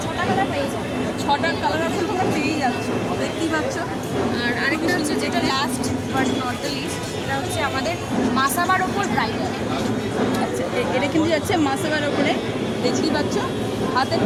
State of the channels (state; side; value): identical; both; correlation 1.00